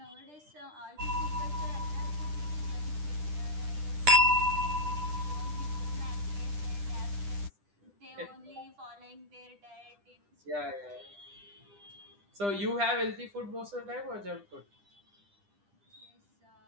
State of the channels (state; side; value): late; left; 10 ms